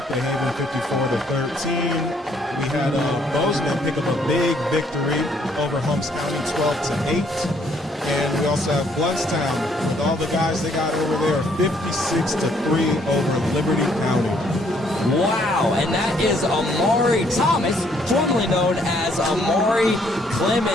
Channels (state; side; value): normal; both; correlation 0.66